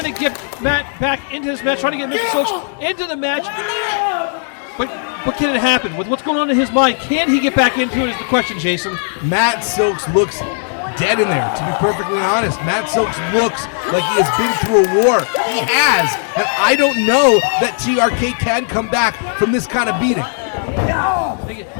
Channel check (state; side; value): silent; right; digital silence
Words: to get Matt back into this match, trying to get Mr. Silks into the match. But can it happen? With what's going on in his mind, can he get back into it is the question, Jason. Matt Silks looks dead in there, to be perfectly honest. Matt Silks looks like he has been through a war. He has, and I don't know that TRK can come back from this kind of beating.